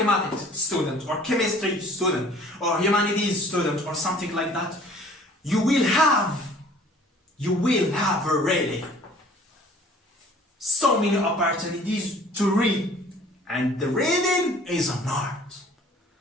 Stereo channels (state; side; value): normal; both; correlation 0.51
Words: student, or chemistry student, or humanities student, or something like that, you will have you will have really so many opportunities to read. And the reading is an art.